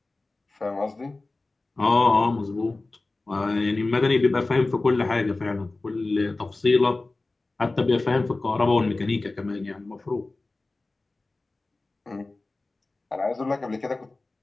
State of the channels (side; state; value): right; quieter; 3.2 dB